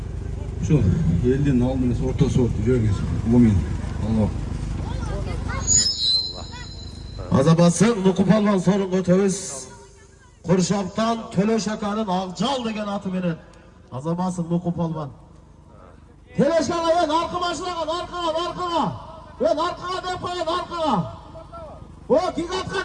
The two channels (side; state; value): both; identical; correlation 1.00